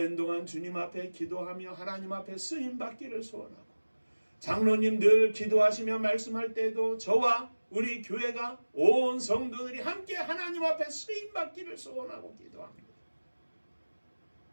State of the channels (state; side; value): inverted; both; correlation -1.00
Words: 동안 주님 앞에 기도하며 하나님 앞에 쓰임받기를 소원하고 장로님 늘 기도하시며 말씀할 때에도 저와 우리 교회가 온 성도들이 함께 하나님 앞에 쓰임받기를 소원하고 기도합니다.